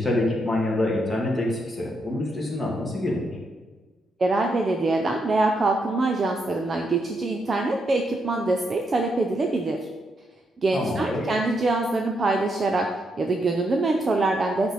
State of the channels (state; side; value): normal; both; correlation 0.80